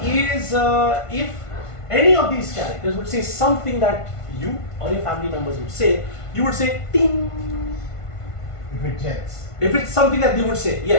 is, if any of these characters would say something that you or your family members would say, you would say ting. If it gels. If it's something that they would say,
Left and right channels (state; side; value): late; right; 1.5 ms